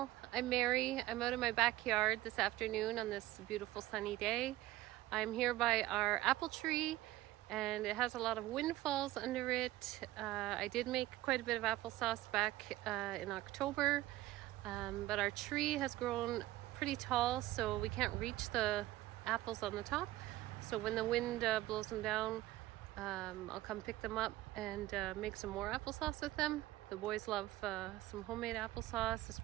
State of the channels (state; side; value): quieter; left; 16.4 dB